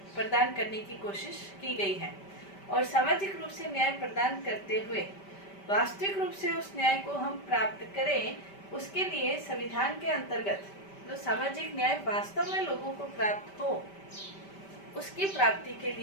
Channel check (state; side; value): late; right; 5.1 ms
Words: प्रदान करने की कोशिश की गई है और सामाजिक रूप से न्याय प्रदान करते हुए वास्तविक रूप से उस न्याय को हम प्राप्त करें, उसके लिए संविधान के अंतर्गत जो सामाजिक न्याय वास्तव में लोगों को प्राप्त हो, उसकी प्राप्ति के